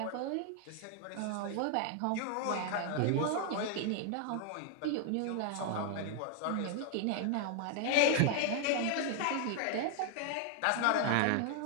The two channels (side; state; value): both; different; correlation 0.00